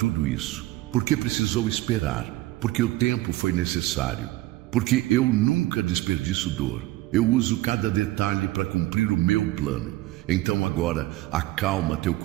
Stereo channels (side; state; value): left; quieter; 17.6 dB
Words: isso, por que precisou esperar, porque o tempo foi necessário. Porque eu nunca desperdiço dor. Eu uso cada detalhe para cumprir o meu plano. Então agora, acalma teu